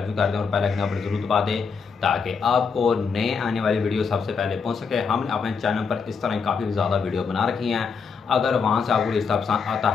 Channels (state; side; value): quieter; right; 5.6 dB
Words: भी कर दें और बेल आइकन पर जरूर दबा दें ताकि आपको नए आने वाली वीडियो सबसे पहले पहुंच सके। हमने अपने चैनल पर इस तरह काफ़ी ज़्यादा वीडियो बना रखी हैं। अगर वहाँ से आपको रिश्ता पसंद आता